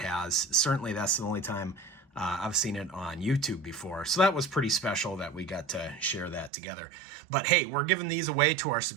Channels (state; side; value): drops out; left; at 6.5 s